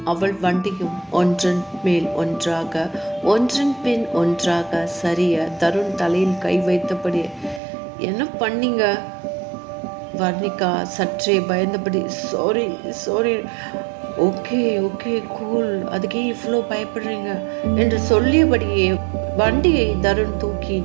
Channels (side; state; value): left; drops out; at 7.6 s